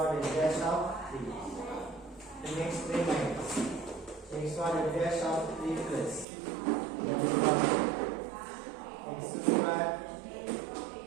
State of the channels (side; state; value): left; drops out; at 6.2 s